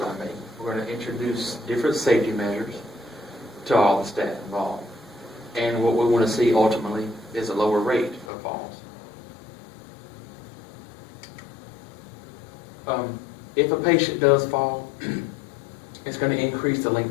to make. We're going to introduce different safety measures to all the staff involved. And what we want to see ultimately is a lower rate of falls. If a patient does fall, it's going to increase the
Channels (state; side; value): drops out; right; at 8.2 s